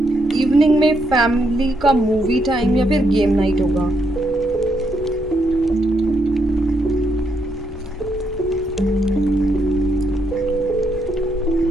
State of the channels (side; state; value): both; normal; correlation 0.77